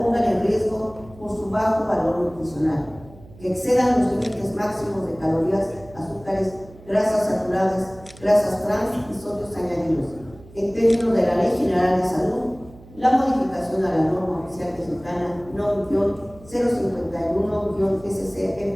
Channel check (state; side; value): noise; right; hum, 22 dB below the sound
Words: en riesgo por su bajo valor nutricional, que excedan los límites máximos de calorías, azúcares, grasas saturadas, grasas trans y sodios añadidos. En términos de la Ley General de Salud, la modificación a la norma oficial mexicana